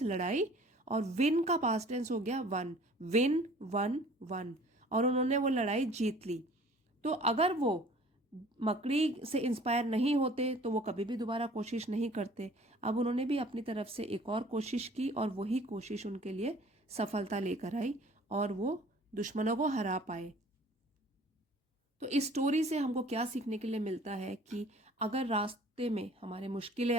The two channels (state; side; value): normal; both; correlation 0.50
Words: लड़ाई, और विन का पास्ट टेंस हो गया वन, विन वन वन, और उन्होंने वो लड़ाई जीत ली। तो अगर वो मकड़ी से इंस्पायर नहीं होते तो वो कभी भी दोबारा कोशिश नहीं करते। अब उन्होंने भी अपनी तरफ से एक और कोशिश की, और वही कोशिश उनके लिए सफलता लेकर आई, और वो दुश्मनों को हरा पाए। तो इस स्टोरी से हमको क्या सीखने के लिए मिलता है कि अगर रास्ते में हमारे मुश्किलें